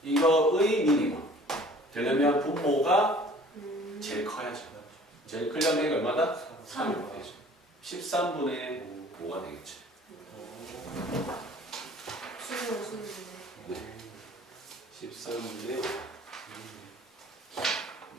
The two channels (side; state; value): both; normal; correlation 0.50